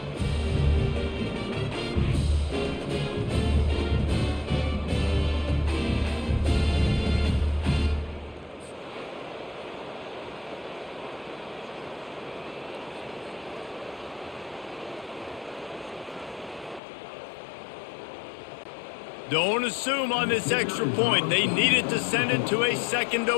Don't assume on this extra point. They needed to send it to a second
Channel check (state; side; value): drops out; right; at 16.8 s